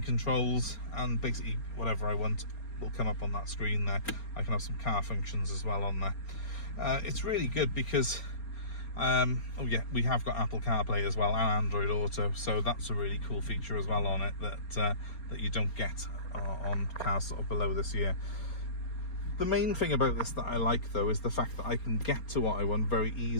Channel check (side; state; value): right; late; 4.3 ms